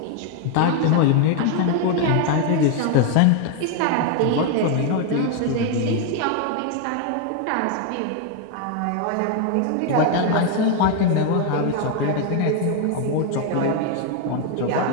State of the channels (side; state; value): both; different; correlation 0.01